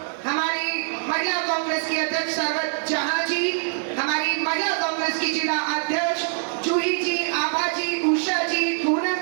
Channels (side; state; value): left; silent; 63 dB below the other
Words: हमारी महिला कांग्रेस की अध्यक्ष सरवत जहां जी, हमारी महिला कांग्रेस की जिला अध्यक्ष जूही जी, आभा जी, उषा जी,